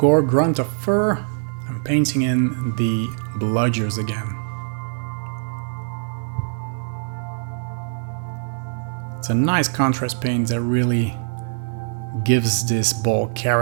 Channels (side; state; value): left; silent; digital silence